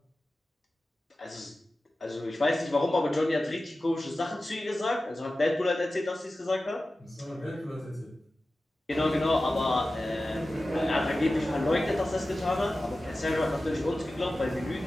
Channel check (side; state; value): both; normal; correlation 0.95